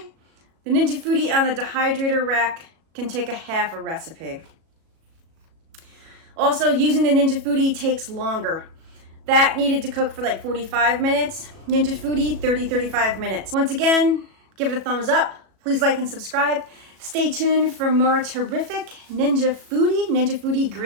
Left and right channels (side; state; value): left; late; 37 ms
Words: The Ninja Foodi on the dehydrator rack can take a half a recipe. Also, using the Ninja Foodi takes longer. That needed to cook for like 45 minutes. Ninja Foodi, 35 minutes. Once again, give it a thumbs up. Please like and subscribe. Stay tuned for more terrific Ninja Foodi